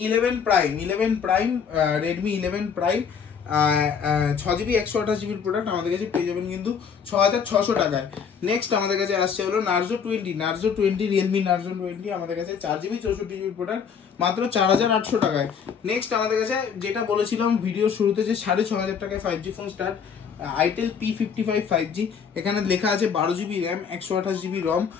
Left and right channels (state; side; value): quieter; right; 6.8 dB